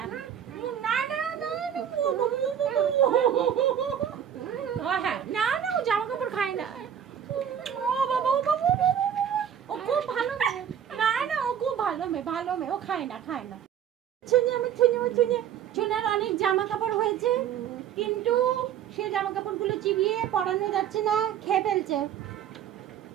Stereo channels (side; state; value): left; quieter; 9.2 dB